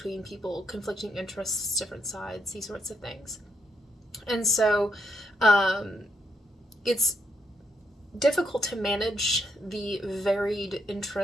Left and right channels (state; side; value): normal; both; correlation 0.78